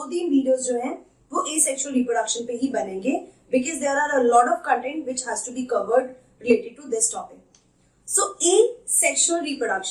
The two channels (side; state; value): both; identical; correlation 1.00